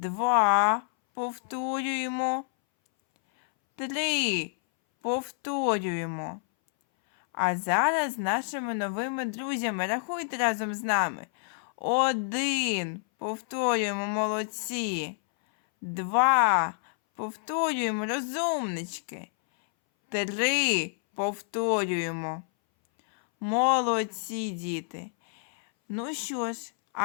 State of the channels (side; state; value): right; silent; 59 dB below the other